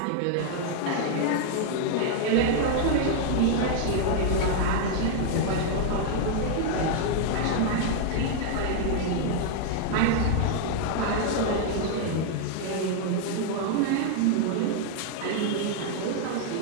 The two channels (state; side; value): different; both; correlation 0.00